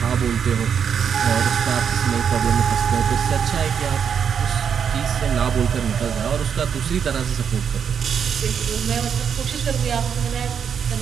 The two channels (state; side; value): quieter; left; 7.4 dB